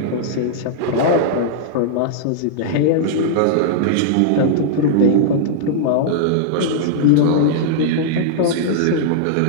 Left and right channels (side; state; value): both; different; correlation -0.02